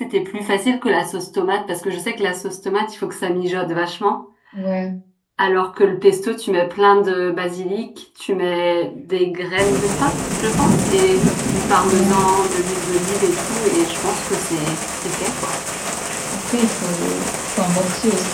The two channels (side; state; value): both; identical; correlation 1.00